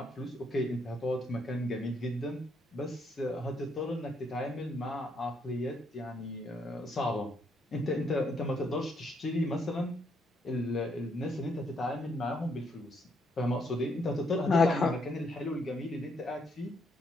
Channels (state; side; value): normal; both; correlation 0.73